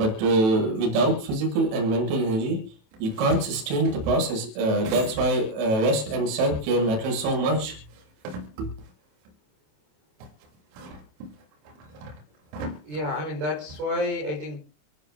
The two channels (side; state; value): left; late; 27 ms